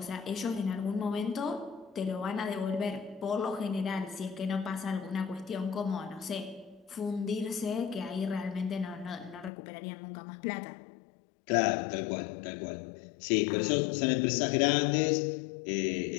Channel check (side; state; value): right; drops out; at 9.5 s